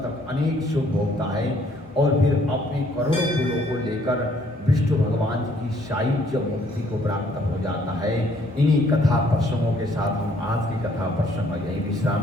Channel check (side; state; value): both; normal; correlation 0.64